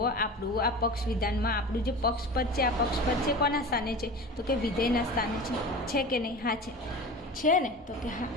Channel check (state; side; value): normal; both; correlation 0.32